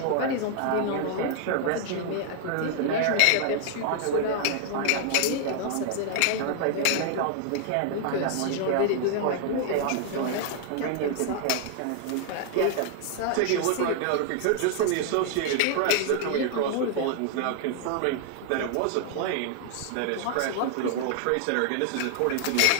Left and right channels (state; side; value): different; both; correlation 0.00